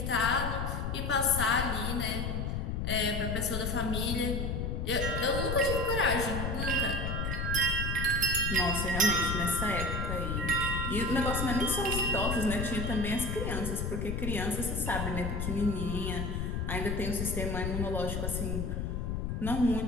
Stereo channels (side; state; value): left; noise; rumble, 1 dB below the sound